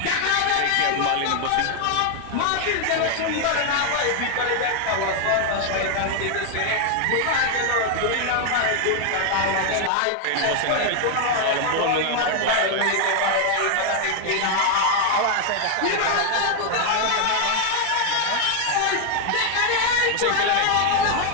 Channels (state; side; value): different; both; correlation 0.00